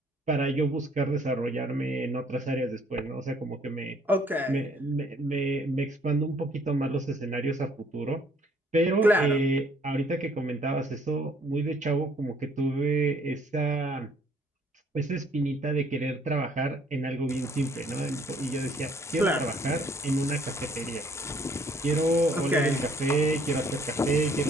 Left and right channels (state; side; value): normal; both; correlation 0.62